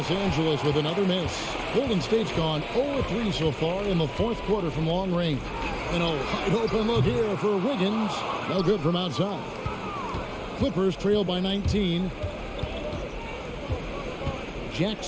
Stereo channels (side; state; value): both; identical; correlation 1.00